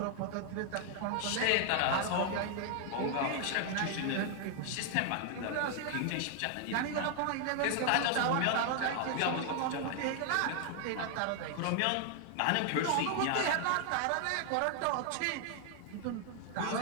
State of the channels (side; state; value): both; different; correlation 0.00